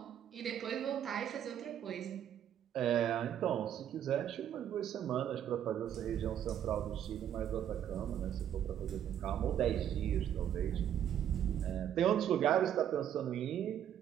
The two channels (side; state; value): left; quieter; 10.0 dB